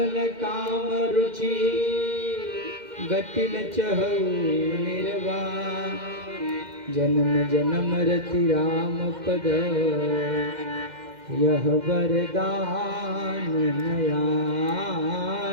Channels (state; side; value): late; left; 2.1 ms